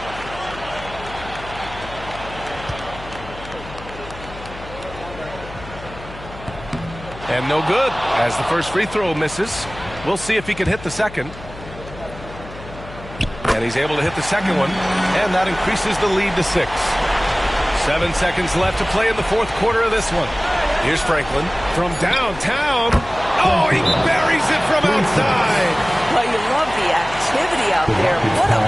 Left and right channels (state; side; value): noise; left; hum, 15 dB below the sound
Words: And no good, as the first free throw misses. We'll see if he can hit the second. And he's able to hit the second one, and that increases the lead to 6. 7 seconds left to play in the fourth quarter of this one. Here's Franklin from downtown. Oh, he buries it from outside. Well, you love the activity out there. What a